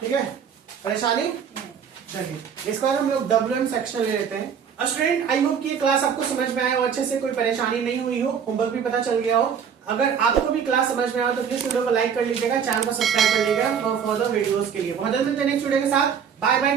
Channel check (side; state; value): left; quieter; 7.4 dB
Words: है। परेशानी? चलिए इसके बाद हम लोग WM सेक्शन ले लेते हैं। स्टूडेंट आई होप कि ये क्लास आपको समझ में आया हो अच्छे से, कोई परेशानी नहीं हुई हो, होमवर्क भी पता चल गया हो। अगर आपको भी क्लास समझ में आया तो प्लीज वीडियो को लाइक कर लीजिएगा, चैनल को सब्सक्राइब कर लीजिएगा फॉर फर्दर वीडियोस के लिए। बहुत जल्द मिलते हैं नेक्स्ट वीडियो के साथ। Bye bye,